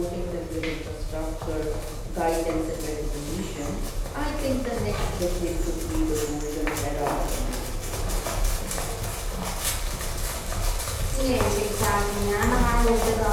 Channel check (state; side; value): identical; both; correlation 1.00